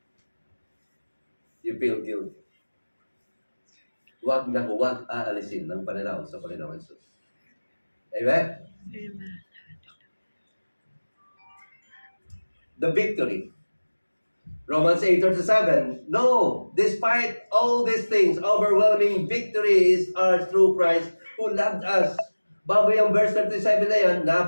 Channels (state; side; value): inverted; both; correlation -1.00